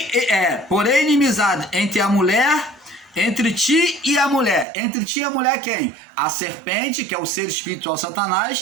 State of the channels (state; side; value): drops out; left; at 4.7 s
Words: inimizade entre a mulher, entre ti e a mulher. Entre ti e a mulher quem? A serpente, que é o ser espiritual